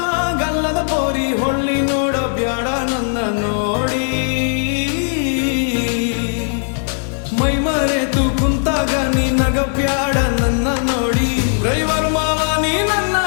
ಗಲ್ಲದ ಪೋರಿ ಹೊಳ್ಳಿ ನೋಡ ಬ್ಯಾಡ ನನ್ನ ನೋಡಿ. ಮೈ ಮರೆತು ಕುಂತಾಗ ನೀ ನಗ ಬ್ಯಾಡ ನನ್ನ ನೋಡಿ. ಡ್ರೈವರ್ ಮಾವ ನೀ ನನ್ನ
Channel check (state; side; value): silent; right; digital silence